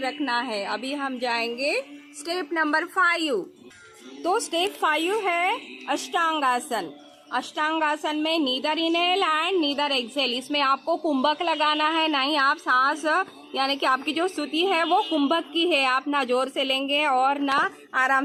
रखना है। अभी हम जाएंगे स्टेप नंबर 5। तो स्टेप 5 है अष्टांगासन। अष्टांगासन में neither inhale and neither exhale. इसमें आपको कुंभक लगाना है, नहीं आप सांस, यानी कि आपकी जो स्तुति है वो कुंभक की है। आप ना जोर से लेंगे और ना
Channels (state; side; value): identical; both; correlation 1.00